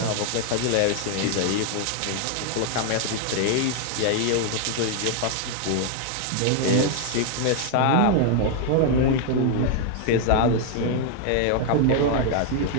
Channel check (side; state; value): both; different; correlation 0.00